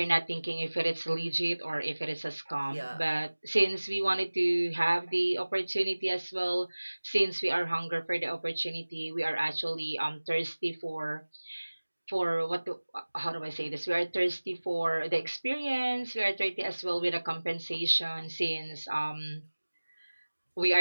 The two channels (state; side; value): inverted; both; correlation -1.00